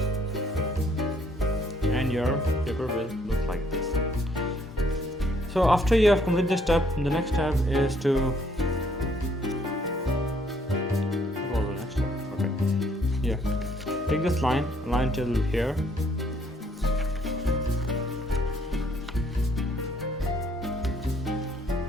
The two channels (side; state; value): both; normal; correlation 0.65